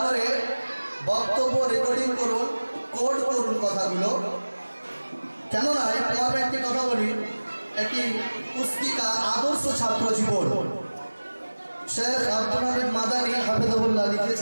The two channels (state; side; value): inverted; both; correlation -1.00